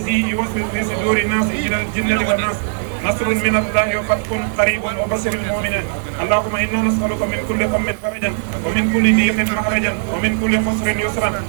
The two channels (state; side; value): silent; left; digital silence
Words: يوسوس في صدور الناس إلى الجنة والناس نصر من الله وفتح قريب وبشر المؤمنين اللهم إنا نسألك من كل هم فرجا ومن كل ضيق مخرجا ومن كل خسر يسرا